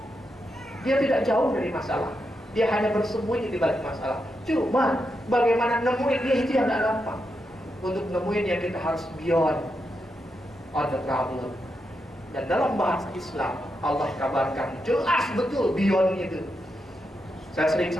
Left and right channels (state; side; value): normal; both; correlation 0.85